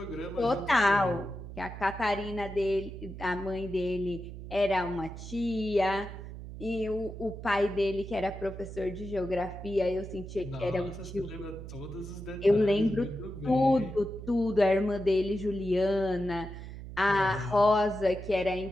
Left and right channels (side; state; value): right; noise; hum, 11 dB below the sound